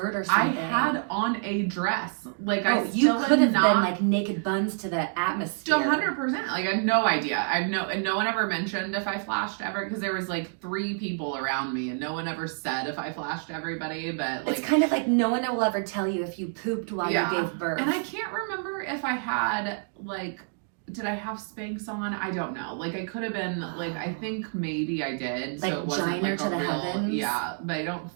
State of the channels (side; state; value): left; silent; 60 dB below the other